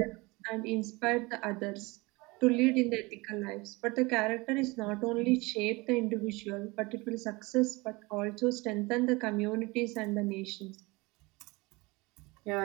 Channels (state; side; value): quieter; left; 24.1 dB